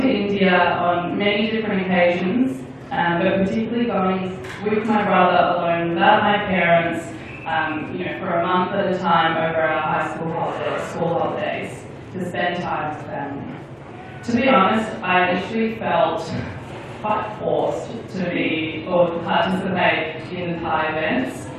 to India on many different occasions, but particularly going with my brother alone without my parents, for a month at a time over our high school holidays, to spend time with family. To be honest, I initially felt quite forced to participate in the TAAI events,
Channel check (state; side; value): identical; both; correlation 1.00